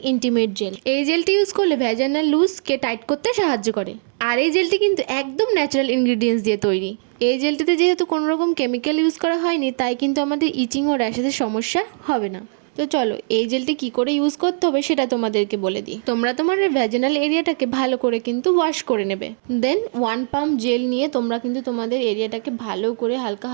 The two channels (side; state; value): left; silent; 65 dB below the other